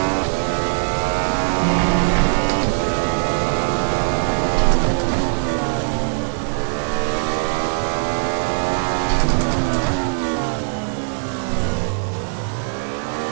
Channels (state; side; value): silent; left; digital silence